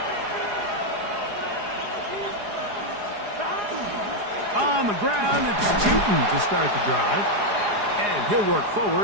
On the ground, it's Tootin to start the drive. And he'll work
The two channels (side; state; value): left; late; 4.8 ms